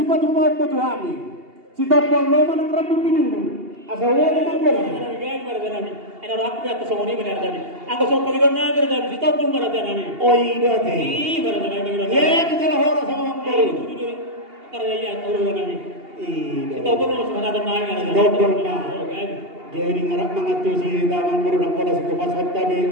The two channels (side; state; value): left; late; 2.8 ms